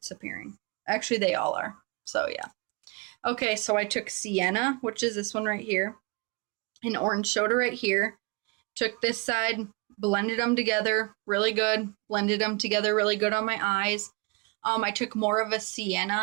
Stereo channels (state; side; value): quieter; left; 29.1 dB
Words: appearing. Actually, they all are. So yeah. Okay, so I took Sienna, which is this one right here, and Orange Soda right here. Took this side, blended them together really good. Blended them together really good on my eyes. I took more of a